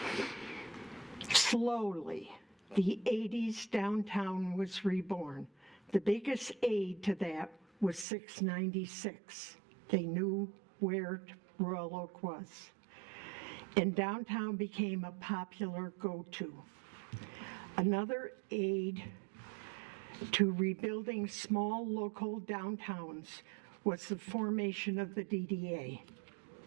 Slowly, the 80s downtown was reborn. The biggest aid to that was 696. They knew where Royal Oak was. And downtown became a popular go-to. Another aid to rebuilding small local downtowns was the formation of the DDA,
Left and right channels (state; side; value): drops out; left; at 8.1 s